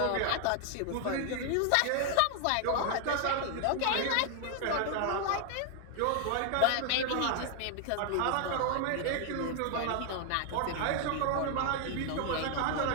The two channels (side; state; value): both; different; correlation 0.00